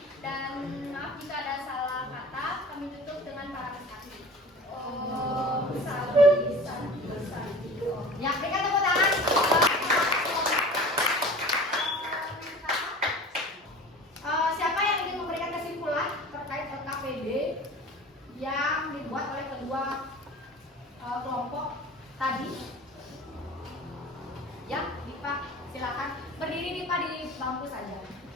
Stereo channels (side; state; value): both; normal; correlation 0.40